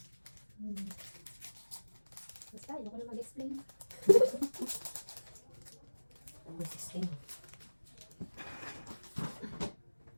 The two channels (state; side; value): inverted; both; correlation -1.00